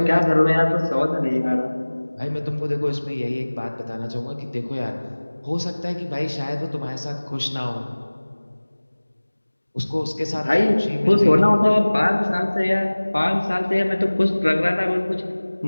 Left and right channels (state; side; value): inverted; both; correlation -1.00